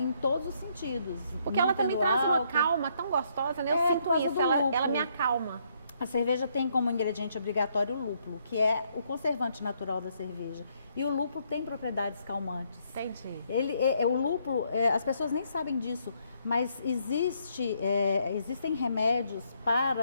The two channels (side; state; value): both; inverted; correlation -0.72